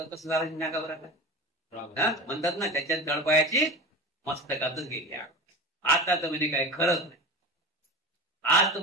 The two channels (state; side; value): normal; both; correlation 0.29